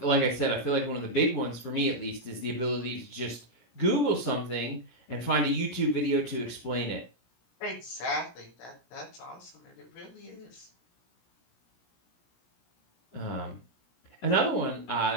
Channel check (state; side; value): late; right; 17 ms